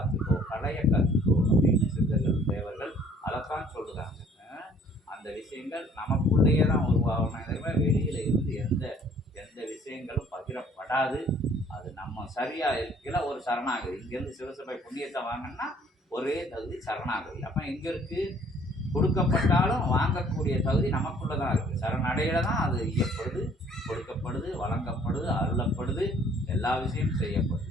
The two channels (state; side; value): normal; both; correlation 0.58